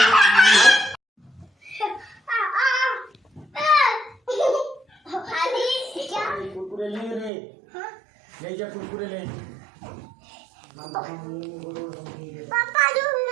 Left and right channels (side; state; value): left; drops out; at 7.3 s